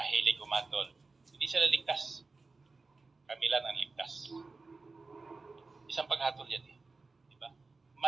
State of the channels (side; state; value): left; quieter; 3.8 dB